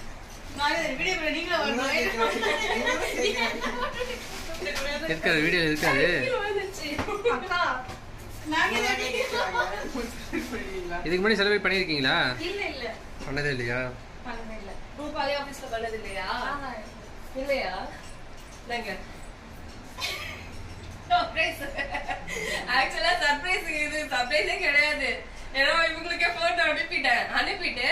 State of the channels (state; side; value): identical; both; correlation 1.00